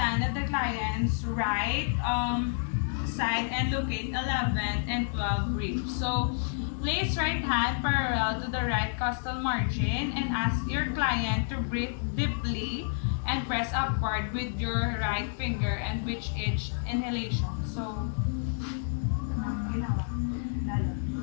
at the client's right side and locate 11 and 12 ribs. So, place right hand parallel to the right costal margin and ask your client to breathe deeply and press upward with your right finger and with each inhalation. So, ginawa. Lalo.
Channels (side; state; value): right; silent; digital silence